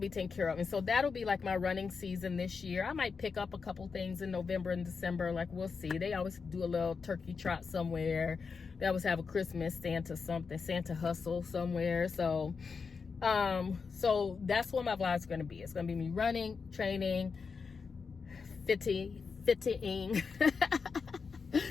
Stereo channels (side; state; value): right; quieter; 5.3 dB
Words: taken care of. And so that'll be like my running season this year. I might pick up a couple things in November and December, like we'll see. They always do a little turkey trot somewhere. They always have a Christmas Santa hustle somewhere. So so that's what my vlog's going to be. It's going to be me running, training, fitting.